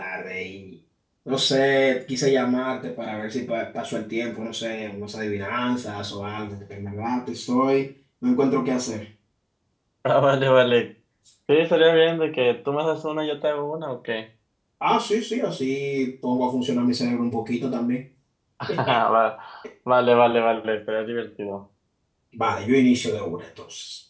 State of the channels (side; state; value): both; identical; correlation 1.00